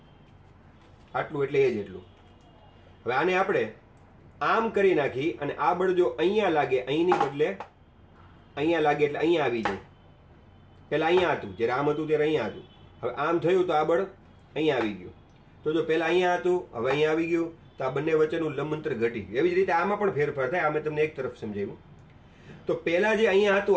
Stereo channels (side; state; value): both; identical; correlation 1.00